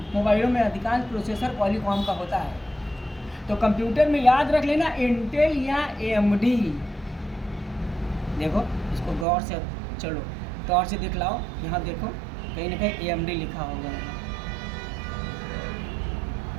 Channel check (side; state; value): left; drops out; at 9.2 s